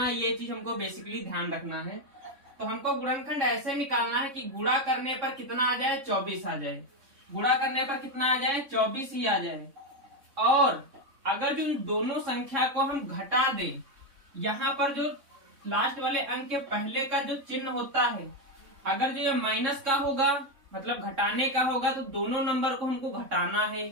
है ये चीज हमको बेसिकली ध्यान रखना है। तो हमको गुणनखंड ऐसे निकालना है कि गुणा करने पर कितना आ जाए, 24 आ जाए। गुणा करने पर कितना आ जाए, 24 ही आ जाए। और अगर जो दोनों संख्या को हम घटा दें, यहाँ पर जो लास्ट वाले अंक के पहले का जो चिन्ह होता है, अगर जो ये माइनस का होगा मतलब घटाने का होगा तो दोनों नंबर को हमको घटाना है।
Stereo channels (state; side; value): late; left; 3.6 ms